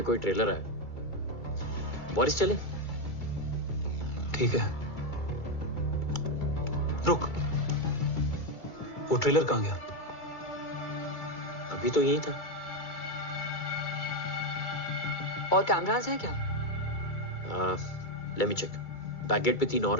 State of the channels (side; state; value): right; late; 2.3 ms